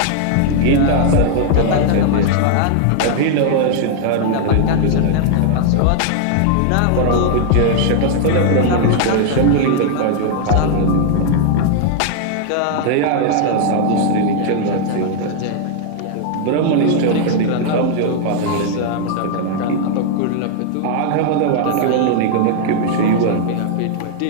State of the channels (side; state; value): both; different; correlation 0.00